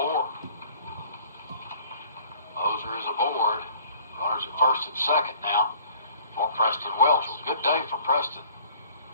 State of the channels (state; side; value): inverted; both; correlation -0.53